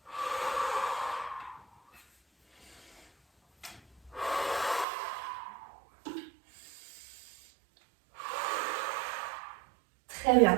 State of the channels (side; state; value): left; drops out; at 4.9 s